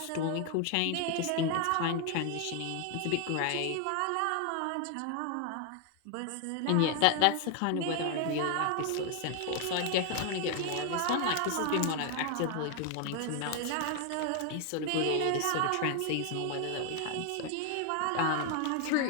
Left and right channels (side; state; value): both; different; correlation 0.00